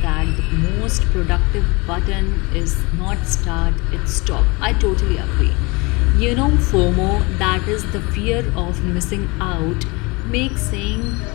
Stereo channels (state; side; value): quieter; right; 26.3 dB